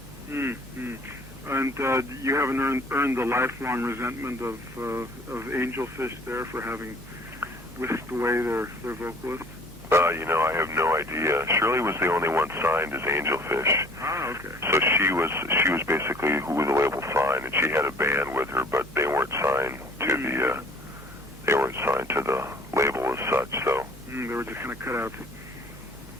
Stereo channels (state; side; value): normal; both; correlation 0.52